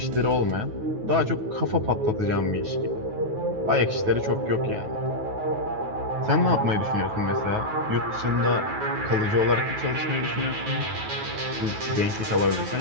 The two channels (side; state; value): left; late; 9.3 ms